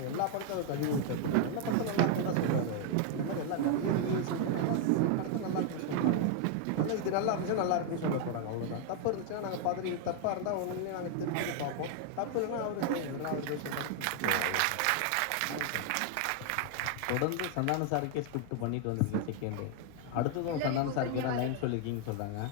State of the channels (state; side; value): different; both; correlation 0.00